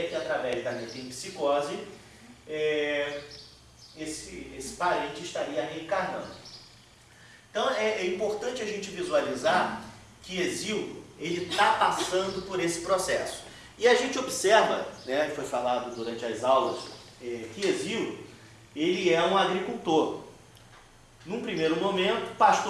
que através da metempsicose esse parente estaria reencarnando. Então é importante a gente visualizar que Hesíodo ele está passando por esse processo. E a gente observa, foi falado durante as aulas, que Hesíodo ele é um agricultor. Num primeiro momento,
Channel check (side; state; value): both; identical; correlation 1.00